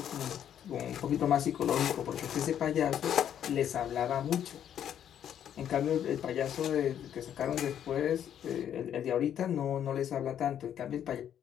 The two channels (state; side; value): quieter; right; 9.7 dB